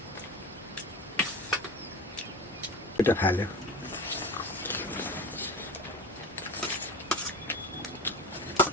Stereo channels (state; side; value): normal; both; correlation 0.30